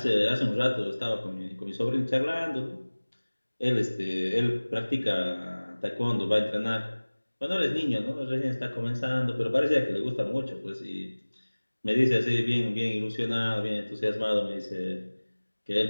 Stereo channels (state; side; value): inverted; both; correlation -1.00